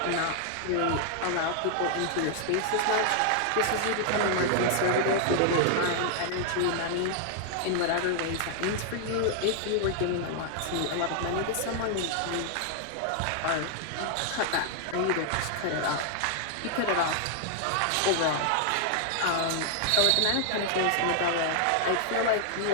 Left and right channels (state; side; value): different; both; correlation 0.00